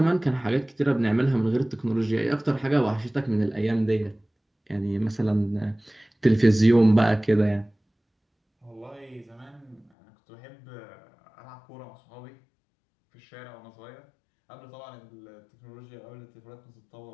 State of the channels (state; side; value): drops out; right; at 9.9 s